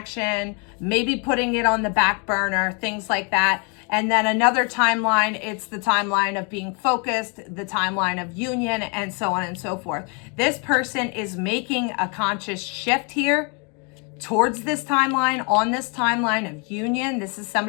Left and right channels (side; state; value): right; quieter; 34.8 dB